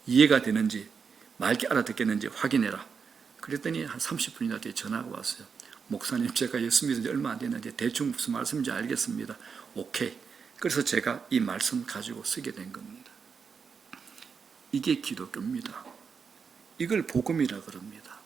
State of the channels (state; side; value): quieter; left; 5.9 dB